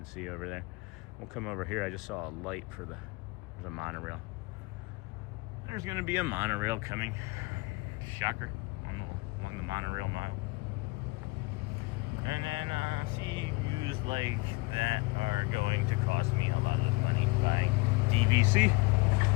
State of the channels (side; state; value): right; quieter; 25.1 dB